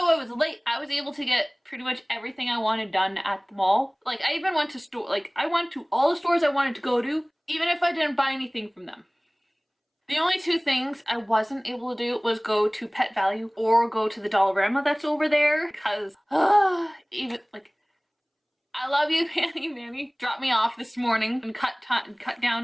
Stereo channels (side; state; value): both; identical; correlation 1.00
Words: I was late, I was able to get pretty much everything I wanted done at the mall. Like, I even went to I went to all the stores I wanted to go to, even if I didn't buy anything from them. The only two things I wasn't able to do was go to Pet Value or go to the Dollarama that's over there, because, even, like, I love you, Manny dropped me off this morning and cut